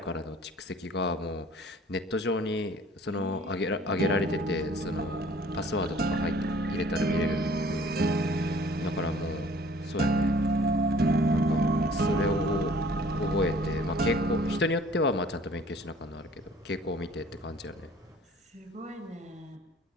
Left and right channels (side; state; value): both; normal; correlation 0.53